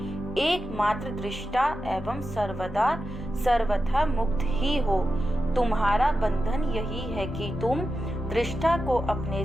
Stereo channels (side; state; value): both; normal; correlation 0.91